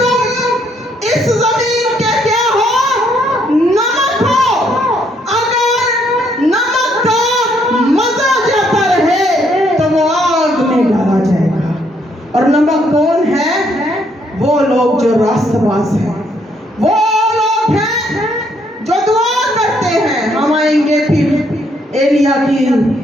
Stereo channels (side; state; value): both; normal; correlation 0.70